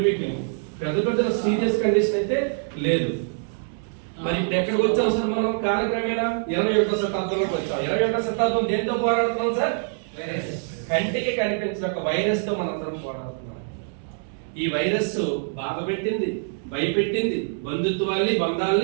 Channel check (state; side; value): silent; left; digital silence